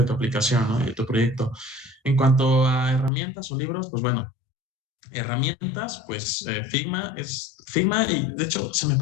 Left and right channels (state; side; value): drops out; right; at 3.1 s